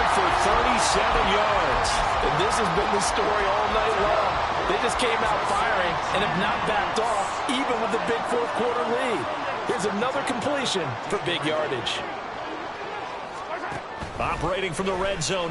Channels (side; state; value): both; identical; correlation 1.00